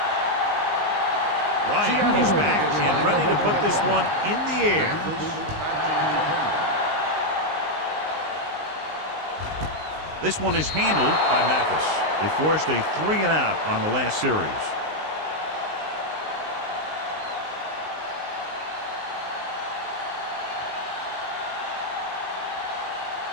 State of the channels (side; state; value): left; late; 19 ms